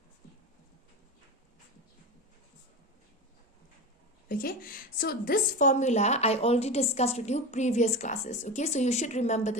Okay, so this formula I already discussed with you previous classes. Okay, so you should remember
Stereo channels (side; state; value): both; normal; correlation 0.24